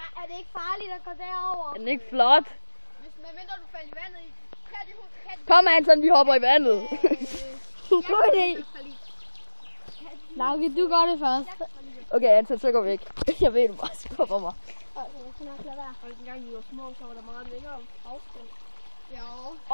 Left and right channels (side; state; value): both; inverted; correlation -1.00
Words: det ikke farligt at gå derover? Er den ikke flot? Medmindre du falder i vandet i. Kom Anton, vi hopper i vandet. God idé. Lauke, du gør det først. Okay Anton, så går vi væk. Jeg ved, du bare skubber mig. Dengang vi var små, så var der meget længere afstand. Ja.